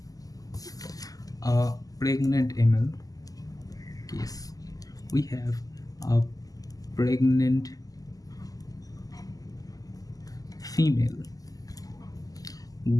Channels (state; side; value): late; right; 0.17 ms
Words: a pregnant ml case. We have a pregnant female